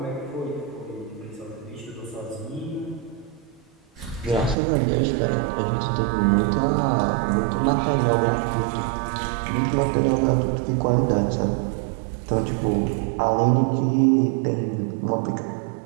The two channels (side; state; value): left; drops out; at 4.5 s